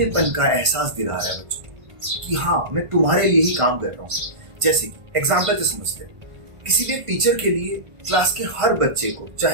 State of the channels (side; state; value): left; late; 1.5 ms